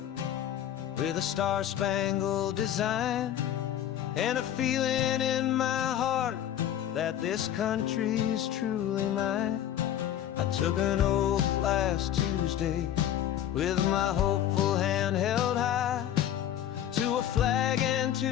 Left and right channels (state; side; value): quieter; right; 11.0 dB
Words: with a star-spangled design, and a feeling in my heart that this country's truly mine. I took an oath last Tuesday with my hopeful hand held high, to a flag and